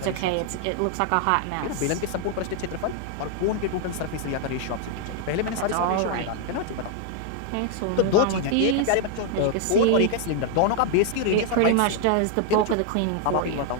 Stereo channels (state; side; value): different; both; correlation 0.00